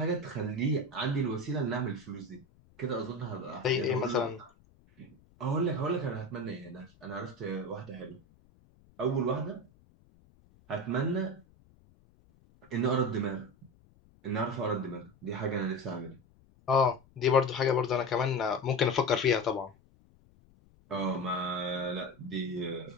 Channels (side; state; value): left; noise; rumble, 29 dB below the sound